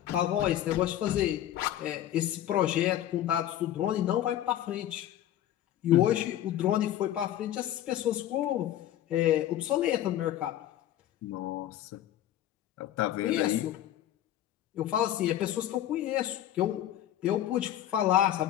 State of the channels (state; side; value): quieter; right; 12.3 dB